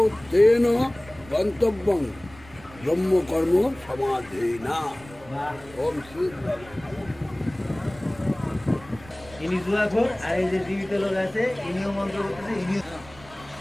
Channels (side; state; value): right; noise; rumble, 21 dB below the sound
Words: তেন গন্তব্যং ব্রহ্মকর্ম সমাধেনা। ওম শ্রী ইনি জুয়াখোর আর এই যে জীবিত লোক আছে ইনিও মন্ত্র করতেছে ইনিও